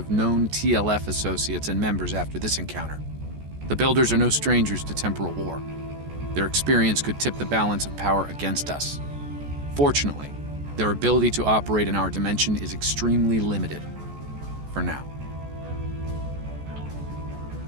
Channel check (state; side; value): late; left; 14 ms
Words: known TLF associates and members after this encounter. The Builders are no strangers to temporal war. Their experience could tip the balance of power against us. Fortunately, their ability to operate in our dimension is extremely limited. For now.